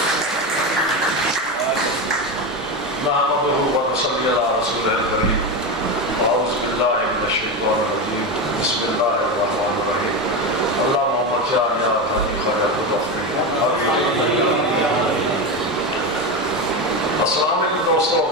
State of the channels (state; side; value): normal; both; correlation 0.17